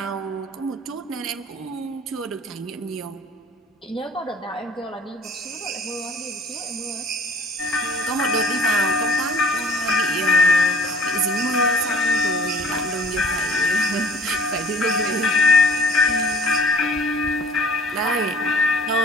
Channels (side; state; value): both; normal; correlation 0.48